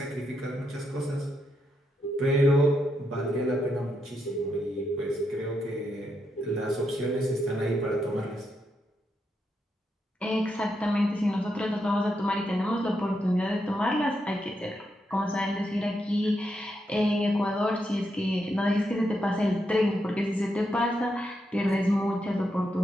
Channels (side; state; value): both; normal; correlation 0.82